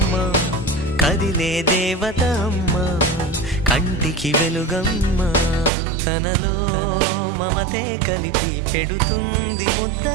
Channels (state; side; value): drops out; left; at 5.7 s